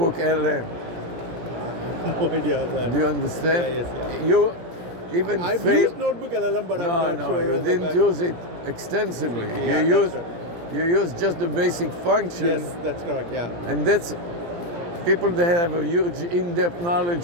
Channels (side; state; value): left; late; 17 ms